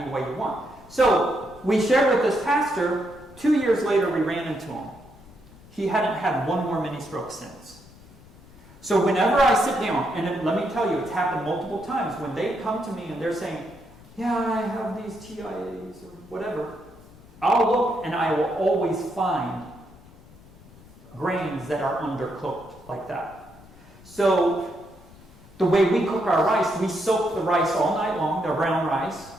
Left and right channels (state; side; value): noise; left; rumble, 22 dB below the sound